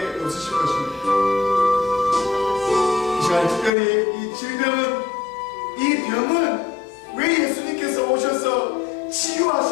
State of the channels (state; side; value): drops out; right; at 3.7 s